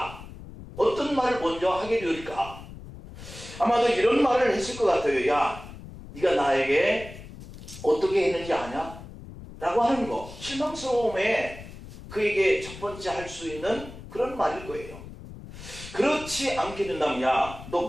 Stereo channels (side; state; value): left; noise; rumble, 14 dB below the sound